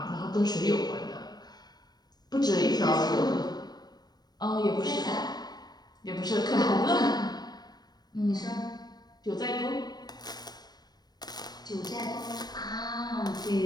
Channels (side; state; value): right; late; 0.19 ms